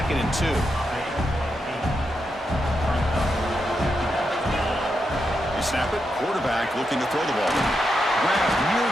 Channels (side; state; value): both; normal; correlation 0.85